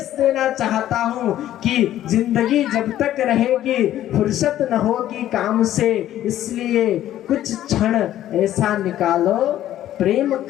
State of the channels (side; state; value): right; quieter; 12.6 dB